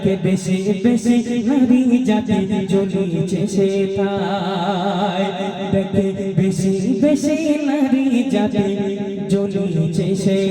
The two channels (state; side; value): identical; both; correlation 1.00